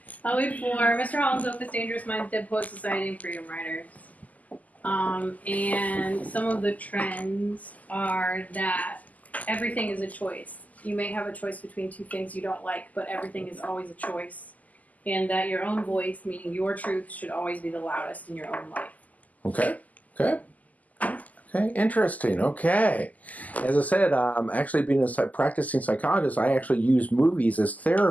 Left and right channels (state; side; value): late; right; 0.077 ms